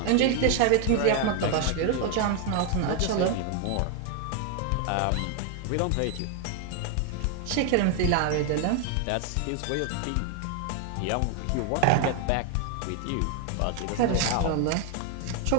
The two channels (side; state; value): both; different; correlation 0.01